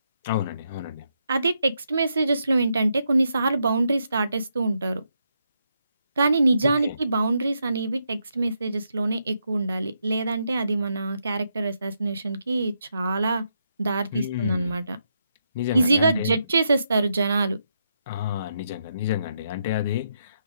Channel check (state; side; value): inverted; both; correlation -0.80